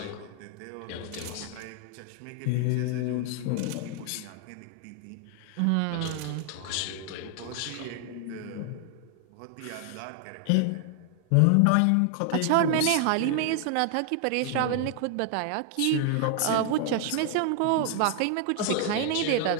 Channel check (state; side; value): different; both; correlation 0.00